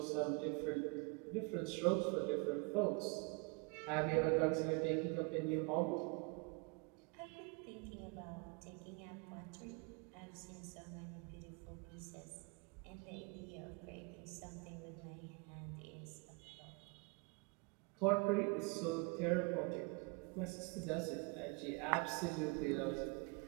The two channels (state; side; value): quieter; left; 30.9 dB